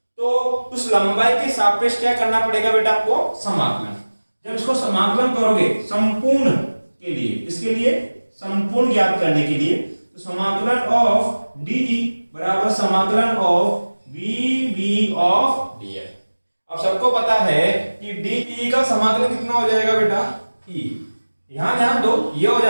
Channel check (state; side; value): inverted; both; correlation -1.00